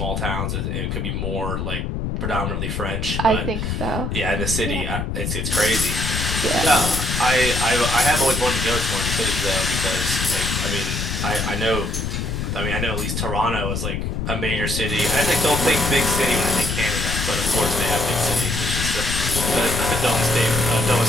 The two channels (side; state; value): left; noise; rumble, 2 dB below the sound